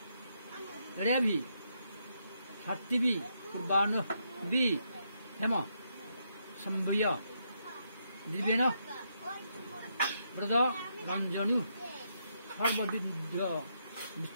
heavy সাত্তিবি পূর্বাণ B হেম সম্ভয় দিবেন ব্রত রঞ্জনী সর্ববিদ্ধ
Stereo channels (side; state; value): both; inverted; correlation -0.79